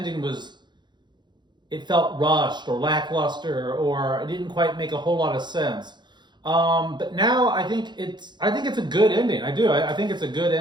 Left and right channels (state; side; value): late; left; 0.21 ms